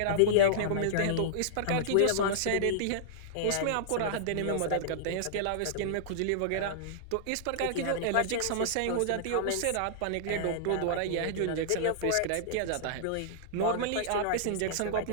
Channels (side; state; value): both; different; correlation -0.02